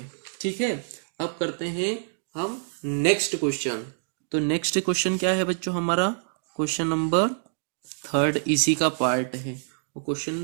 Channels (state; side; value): silent; left; digital silence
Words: ठीक है। अब करते हैं हम नेक्स्ट क्वेश्चन। तो नेक्स्ट क्वेश्चन क्या है बच्चों हमारा? क्वेश्चन नंबर 3 इसी का पार्ट है। वो